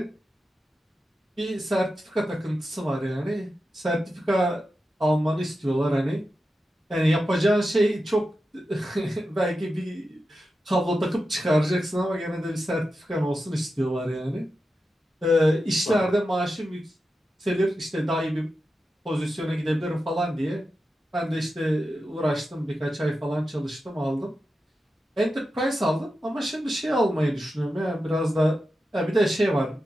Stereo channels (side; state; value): both; normal; correlation 0.90